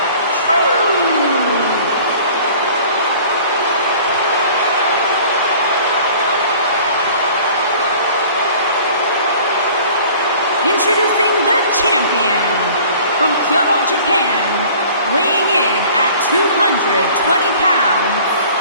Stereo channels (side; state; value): both; inverted; correlation -0.48